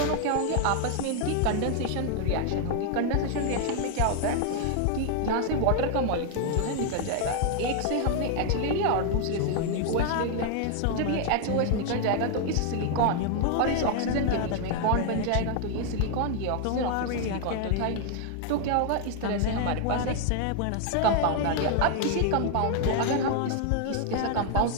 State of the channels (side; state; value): both; different; correlation 0.00